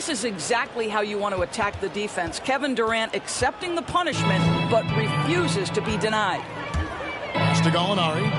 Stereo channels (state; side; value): identical; both; correlation 1.00